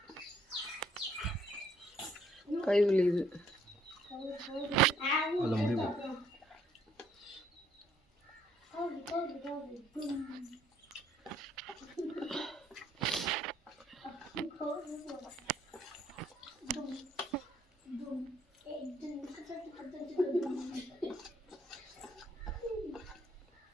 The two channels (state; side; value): normal; both; correlation 0.65